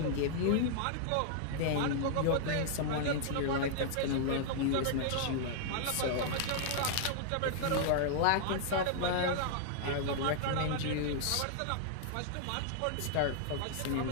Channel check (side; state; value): both; different; correlation -0.01